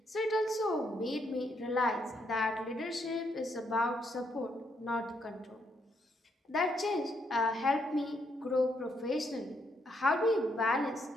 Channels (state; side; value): normal; both; correlation 0.75